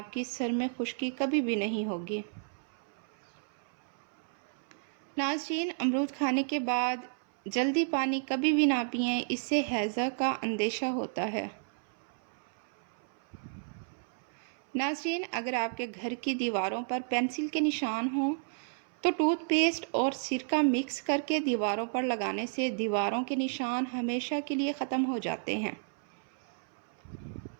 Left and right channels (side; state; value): left; silent; 56 dB below the other